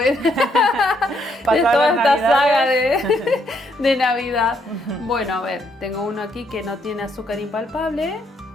de toda esta saga de Navidad. Bueno, a ver, tengo uno aquí que no tiene azúcar impalpable,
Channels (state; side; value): normal; both; correlation 0.72